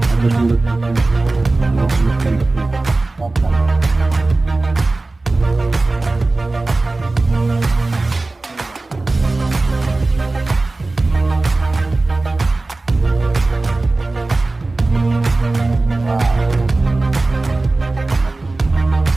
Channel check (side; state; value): left; quieter; 3.2 dB